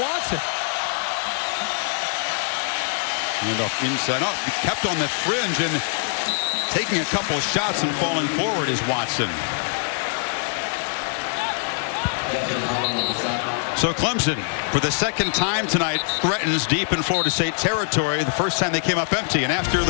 Handoff inside. Oh, kept on the fringe and taking a couple of shots and falling forward is Watson. So Clemson, for the second time tonight, threatens deep in Florida State territory. The first time they came up empty, and after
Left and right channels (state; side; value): silent; right; 63 dB below the other